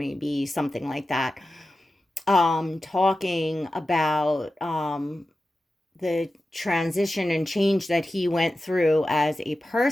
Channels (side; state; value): both; normal; correlation 0.93